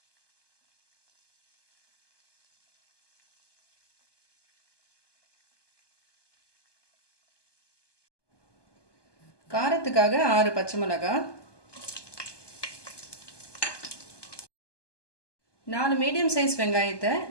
காரத்துக்காக 6 பச்சை மிளகாய், 4 மீடியம் சைஸ் வெங்காயத்தை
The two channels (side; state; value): right; late; 1.2 ms